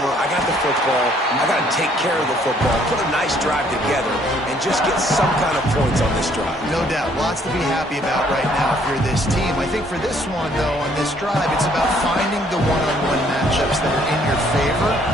I got the football. I got to take care of the football, put a nice drive together, and just get some kind of points on this drive. No doubt. Lots to be happy about right now if you're this team. I think for this one, though, on this drive, it's about finding the one-on-one matchups that are in your favor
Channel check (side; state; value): both; normal; correlation 0.64